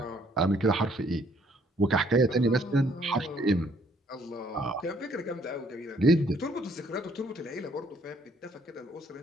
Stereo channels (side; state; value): both; normal; correlation 0.65